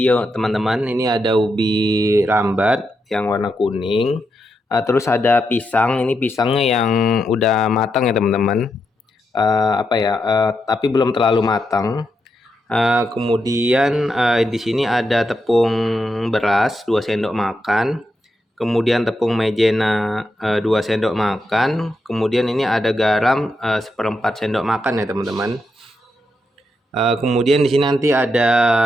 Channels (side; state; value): both; normal; correlation 0.83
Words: ya teman-teman. Ini ada ubi rambat yang warna kuning. Terus ada pisang. Ini pisangnya yang udah matang ya teman-teman. Tapi belum terlalu matang. Kemudian di sini ada tepung beras 2 sendok makan, kemudian tepung maizena 2 sendok makan, kemudian ini ada garam 1/4 sendok makan ya teman-teman. Kemudian di sini nanti ada